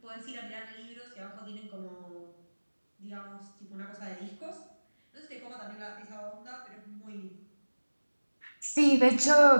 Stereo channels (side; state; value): both; inverted; correlation -1.00